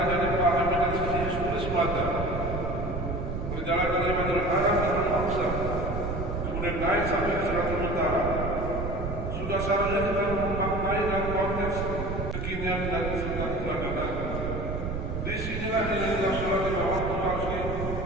dipahami dari sisi historis semata. Perjalanan dari Madinah Arab dan Al-Aqsa kemudian naik sampai ke Suratul Utara sudah seharusnya kita memaknai dalam konteks kekinian dan sekitar peradaban. Di sinilah nilai sholat di bawah Tuhan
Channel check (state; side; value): noise; right; rumble, 4 dB below the sound